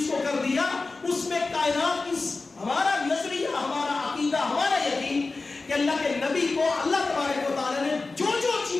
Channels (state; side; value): quieter; right; 3.7 dB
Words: کو کر دیا اس میں کائنات کی ہمارا نظریہ، ہمارا عقیدہ، ہمارا یقین کہ اللہ کے نبی کو اللہ تبارک و تعالی نے جو جو